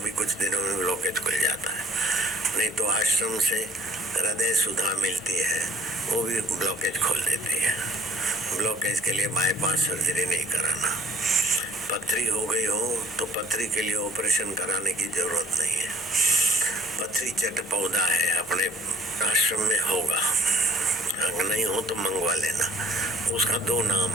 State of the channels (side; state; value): both; normal; correlation 0.59